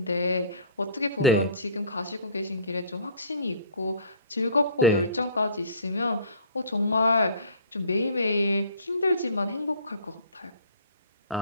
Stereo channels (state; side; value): inverted; both; correlation -0.48